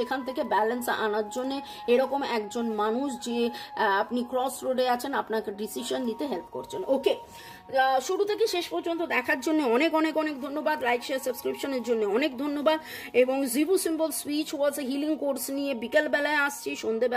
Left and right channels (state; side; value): identical; both; correlation 1.00